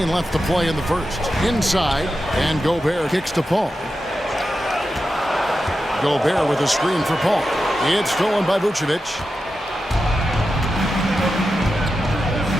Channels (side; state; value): both; normal; correlation 0.90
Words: left to play in the first. Inside, and Gobert kicks to Paul. Gobert with a screen for Paul. It's stolen by Vucevic.